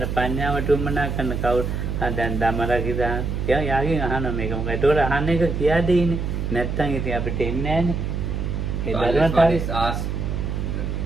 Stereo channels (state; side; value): noise; right; hum, 2 dB below the sound